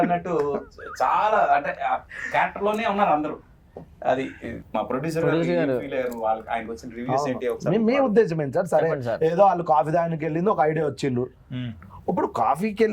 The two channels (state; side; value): identical; both; correlation 1.00